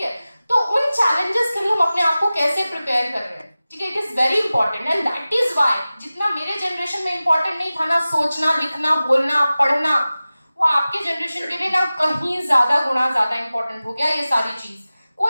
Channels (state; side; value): inverted; both; correlation -0.97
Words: तो उन चैलेंजेस के लिए हम अपने आप को कैसे प्रिपेयर कर रहे हैं, ठीक है, it is very important. And that is why जितना मेरे जनरेशन में इंपॉर्टेंट नहीं था ना सोचना, लिखना, बोलना, पढ़ना, वो आपके जनरेशन के लिए ना कहीं ज्यादा गुना ज्यादा इंपॉर्टेंट हो गया ये सारी चीज।